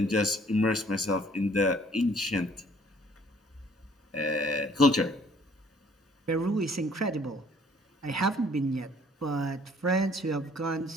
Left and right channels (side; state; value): both; normal; correlation 0.58